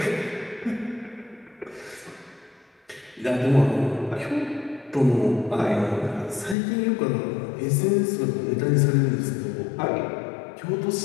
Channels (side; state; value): right; drops out; at 6.6 s